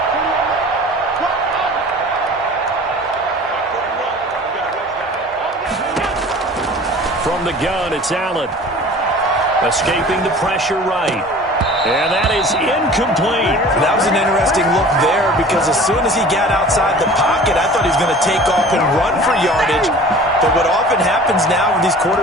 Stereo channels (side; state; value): both; normal; correlation 0.43